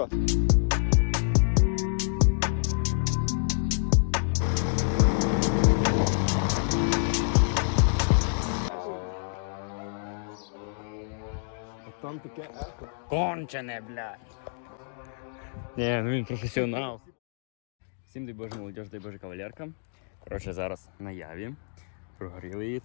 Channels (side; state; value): right; silent; digital silence